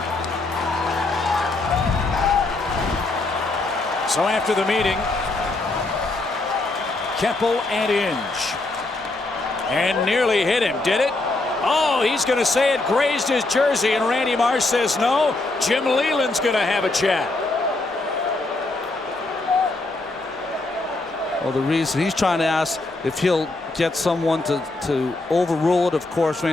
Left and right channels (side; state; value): right; quieter; 3.1 dB